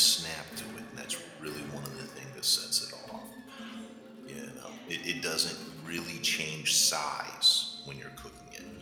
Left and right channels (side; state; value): both; identical; correlation 1.00